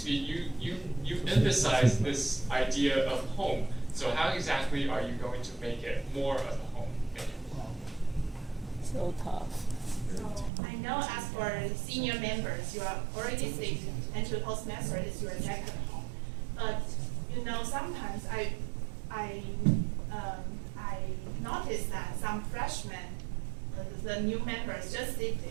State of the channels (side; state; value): left; drops out; at 10.5 s